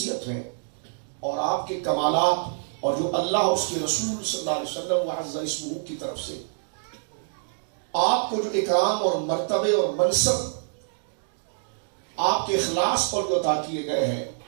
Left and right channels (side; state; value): left; silent; digital silence